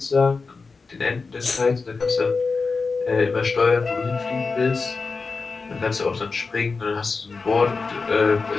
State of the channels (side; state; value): right; quieter; 4.4 dB